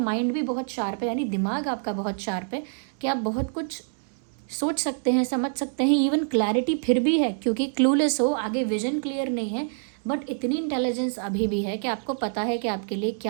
भी बहुत शार्प है, यानी दिमाग आपका बहुत शार्प है कि आप बहुत कुछ सोच सकते हैं, समझ सकते हैं, इवन क्लैरिटी फिर भी है क्योंकि क्लूलेस हो, आगे विजन क्लियर नहीं है, बट इतनी इंटेलिजेंस अभी भी है कि आपको पता है कि आपके लिए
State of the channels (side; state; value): left; silent; digital silence